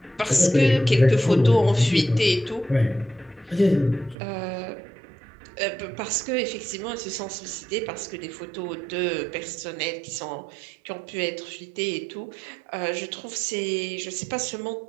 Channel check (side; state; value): left; drops out; at 4.2 s